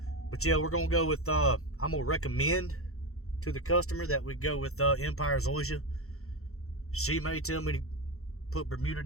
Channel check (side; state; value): right; late; 0.63 ms